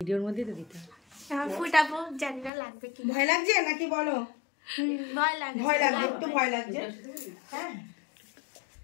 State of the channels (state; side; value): drops out; right; at 2.5 s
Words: ভিডিওর মধ্যেই তো দিতে হবে। ফুটাবো, জানি না লাগবে কি। ভয় লাগছে নাকি বলো? ভয় লাগছে, ভয় লাগছে, একটু ভয় লাগছে। হ্যাঁ,